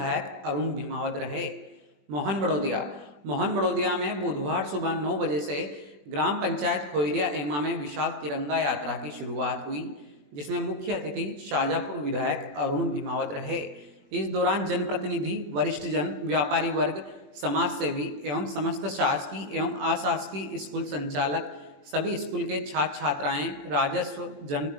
अरुण भीमावत रहे। मोहन बड़ौदिया में बुधवार सुबह 9 बजे से ग्राम पंचायत खोइरिया एमा में विशाल तिरंगा यात्रा की शुरुआत हुई, जिसमें मुख्य अतिथि शाजापुर विधायक अरुण भीमावत रहे। इस दौरान जनप्रतिनिधि, वरिष्ठ जन, व्यापारी वर्ग, समाज सेवी एवं समस्त शासकीय एवं अशासकीय स्कूल संचालक, सभी स्कूल के छात्र छात्राएं, राजस्व,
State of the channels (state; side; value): late; left; 21 ms